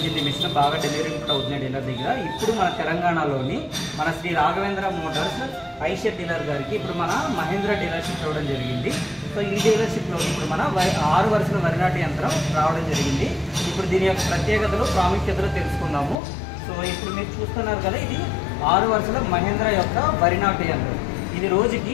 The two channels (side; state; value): right; drops out; at 16.2 s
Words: మిషన్. బాగా డెలివరీ కూడా అవుతున్నాయి డీలర్ దగ్గర. ఇప్పుడు మన తెలంగాణలోని మన శ్రీ రాఘవేంద్ర మోటార్స్ ఐషర్ డీలర్ గారికి ఇప్పుడు మన మహేంద్ర డీలర్షిప్ రావడం జరిగింది. సో ఈ డీలర్షిప్లో ఇప్పుడు మన 6 వరుసల వరి నాటు యంత్రం రావడం జరిగింది. ఇప్పుడు దీని యొక్క ప్రత్యేకతలు ప్రాముఖ్యతలు తెలుసుకుందాము. సో ఇప్పుడు మీరు చూస్తున్నారు కదా, ఇది 6 వరుసల మహేంద్ర యొక్క వరి నాటు యంత్రం. ఇది